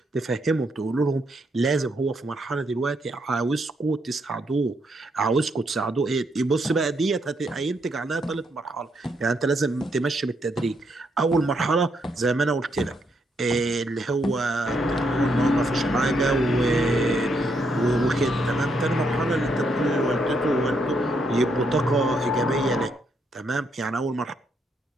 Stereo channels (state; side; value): normal; both; correlation 0.76